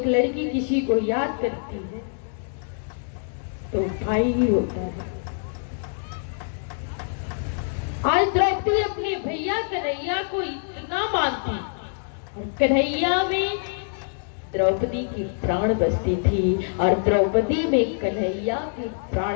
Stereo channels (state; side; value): silent; right; digital silence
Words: लड़की किसी को याद करती है तो भाई ही होता है। द्रौपदी अपने भैया कन्हैया को इतना मानती, कन्हैया में द्रौपदी की प्राण बसती थी और द्रौपदी में कन्हैया की